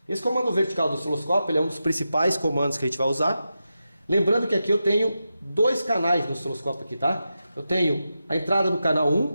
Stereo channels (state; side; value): inverted; both; correlation -0.90